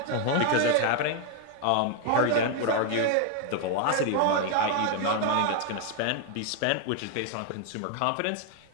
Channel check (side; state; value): both; different; correlation 0.00